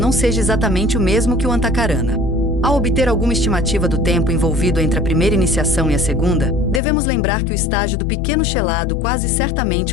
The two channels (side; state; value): right; drops out; at 6.8 s